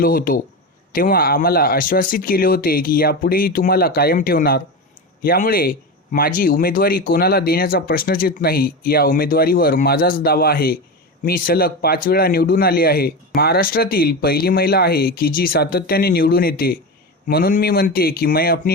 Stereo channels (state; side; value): normal; both; correlation 0.21